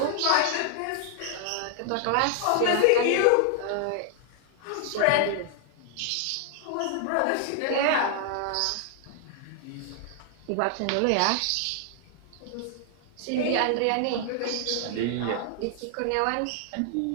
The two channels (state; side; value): different; both; correlation 0.00